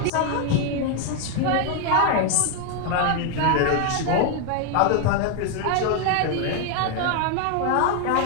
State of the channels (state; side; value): different; both; correlation 0.01